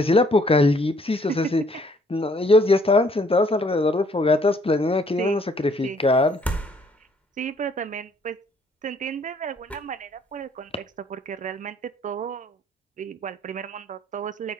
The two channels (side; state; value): both; normal; correlation 0.63